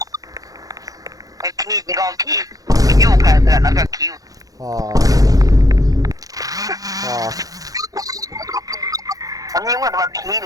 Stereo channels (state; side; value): late; left; 0.17 ms